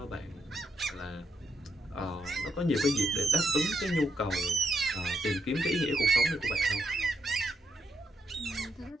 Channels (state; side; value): normal; both; correlation 0.80